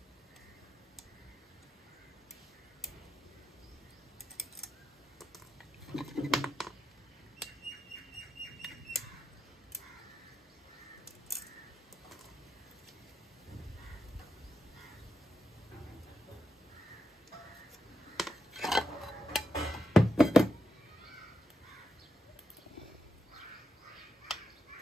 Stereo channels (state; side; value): normal; both; correlation 0.84